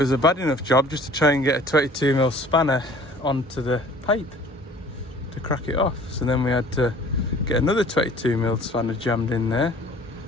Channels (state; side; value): normal; both; correlation 0.50